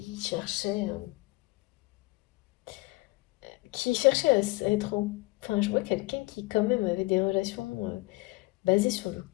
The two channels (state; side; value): quieter; right; 23.1 dB